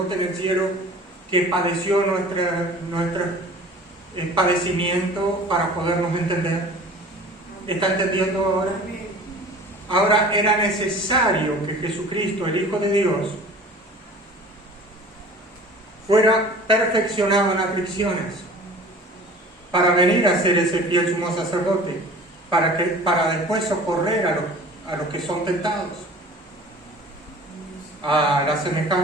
en el cielo que padeció nuestro padecimiento para podernos entender? ¿Está entendiendo ahora? Ahora era necesario que Jesucristo, el Hijo de Dios, fuera perfeccionado en aflicciones para venir a ser ese fiel sumo sacerdote, para después socorrer a los que son tentados, a la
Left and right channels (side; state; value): both; normal; correlation 0.44